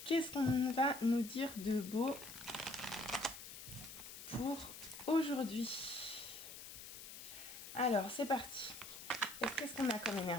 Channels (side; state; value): left; noise; hiss, 12 dB below the sound